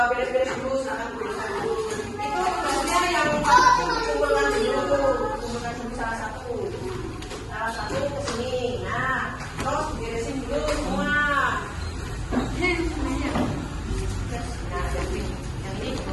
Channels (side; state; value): both; identical; correlation 1.00